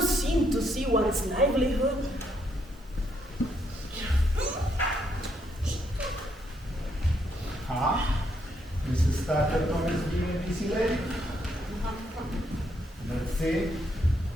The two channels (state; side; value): normal; both; correlation 0.75